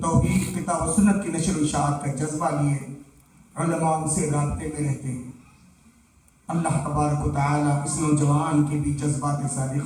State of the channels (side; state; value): both; identical; correlation 1.00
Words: توحید، کتاب و سنت کی نشر و اشاعت کا جذبہ لیے علماء سے رابطے میں رہتے ہیں. اللہ تبارک و تعالی اس نوجوان کے بھی جذبات